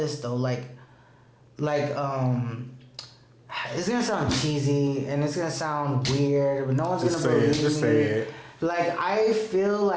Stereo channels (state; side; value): identical; both; correlation 1.00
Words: though, like it's gonna sound cheesy and it's gonna sound weird, but no one's gonna believe me. Like I feel